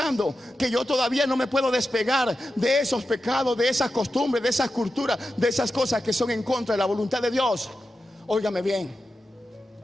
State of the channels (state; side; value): normal; both; correlation 0.91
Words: Que yo todavía no me puedo despegar de esos pecados, de esas costumbres, de esas culturas, de esas cosas que son en contra de la voluntad de Dios. Óigame bien.